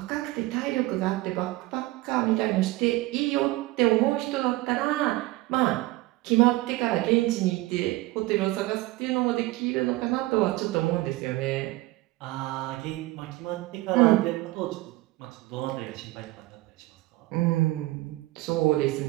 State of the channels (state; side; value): quieter; left; 19.5 dB